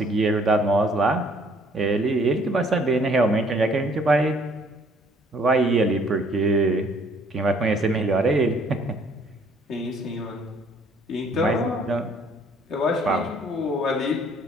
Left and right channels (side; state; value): both; normal; correlation 0.61